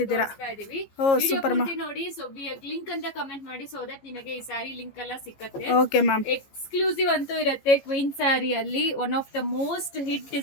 ಇದೀವಿ. ಓ ವಿಡಿಯೋ ಸೂಪರ್ ಮ್ಯಾಮ್. ಪೂರ್ತಿ ನೋಡಿ. ಸೊ ಲಿಂಕ್ ಅಂತ ಕಮೆಂಟ್ ಮಾಡಿ, ಸೊ ದಟ್ ನಿಮಗೆ ಈ ಸ್ಯಾರಿ ಲಿಂಕ್ ಎಲ್ಲ ಸಿಕ್ಕತ್ತೆ. Okay ma'am. ಎಕ್ಸ್ಕ್ಲೂಸಿವ್ ಅಂತೂ ಇರುತ್ತೆ ಕ್ವೀನ್ ಸ್ಯಾರಿ ಅಲ್ಲಿ. One of the most hit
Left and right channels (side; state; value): right; late; 15 ms